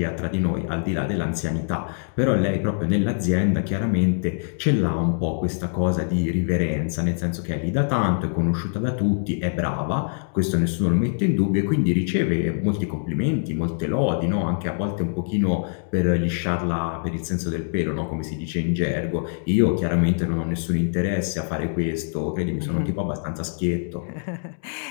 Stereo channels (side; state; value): right; silent; digital silence